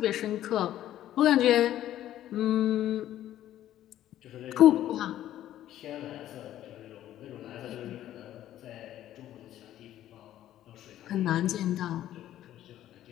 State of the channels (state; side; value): quieter; right; 12.6 dB